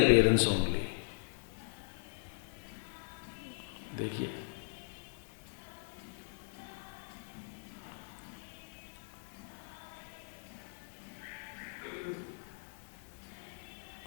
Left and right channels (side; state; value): right; silent; digital silence